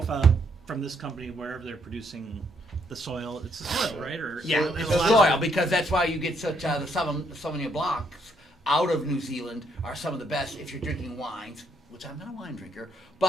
from this company, wherever they're producing the soil, it's the soil, right? Or Yeah, there's it's a lot the of- soil because that's why you get such the Sauvignon Blancs out of New Zealand are some of the best if you're drinking wines, which I'm not a wine drinker,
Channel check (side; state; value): both; normal; correlation 0.72